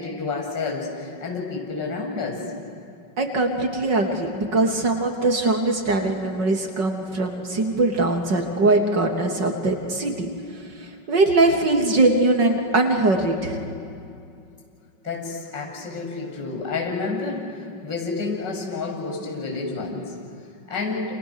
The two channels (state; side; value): late; left; 5.4 ms